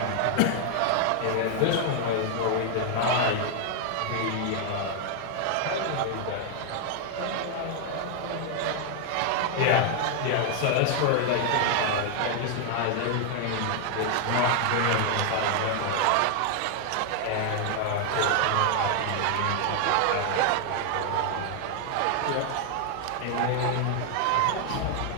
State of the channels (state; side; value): different; both; correlation 0.00